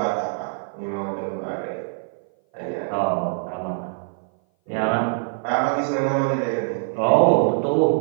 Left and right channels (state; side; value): silent; left; 57 dB below the other